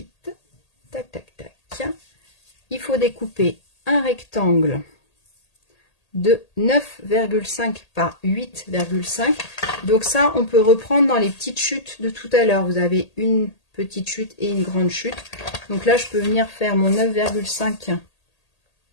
tac, tac, tac, il faut découper un rectangle de 9,5 par 8,5. Donc ça, on peut reprendre dans les petites chutes de tout à l'heure. Vous avez une petite chute et une grande chute. Donc là, je peux venir faire mon 9,5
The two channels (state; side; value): late; right; 1.8 ms